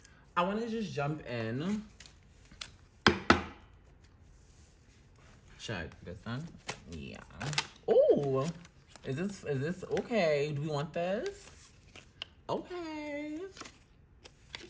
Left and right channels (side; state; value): both; identical; correlation 1.00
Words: I want to just jump in. Check this one. Yeah. Oh, is this okay? Do we want this? Okay.